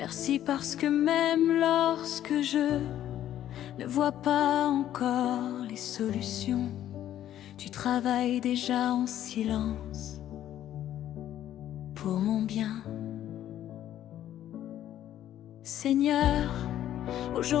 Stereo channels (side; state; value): right; quieter; 11.8 dB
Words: parce que même lorsque je ne vois pas encore les solutions, tu travailles déjà en silence pour mon bien. Seigneur,